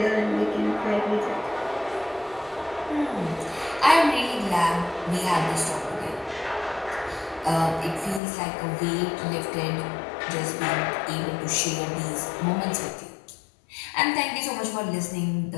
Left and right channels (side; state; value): right; drops out; at 8.2 s